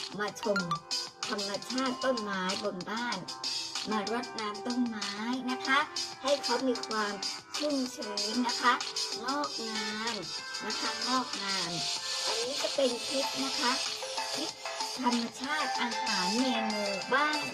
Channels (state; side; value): identical; both; correlation 1.00